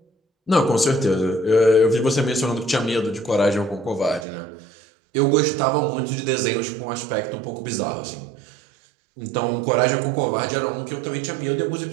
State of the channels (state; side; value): drops out; left; at 4.2 s